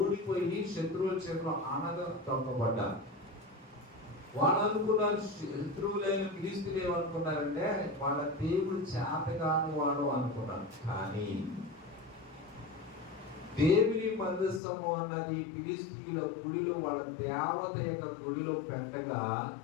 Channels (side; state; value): right; drops out; at 14.6 s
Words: శత్రువుల చేతిలో ఆనగా తొక్కబడ్డారు. వాళ్ళు అనుకున్నారు, శత్రువులైన ఫిలిష్తీయులు ఏమనుకున్నారంటే వాళ్ళ దేవుడు చేతగాని వాడు అనుకున్నారు. కానీ దేవుని మందసము అన్నది ఫిలిష్తీయుల గుడిలో, వాళ్ళ దేవత యొక్క గుడిలో పెట్టగా